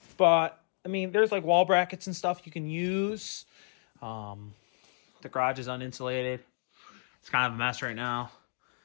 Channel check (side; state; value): right; silent; digital silence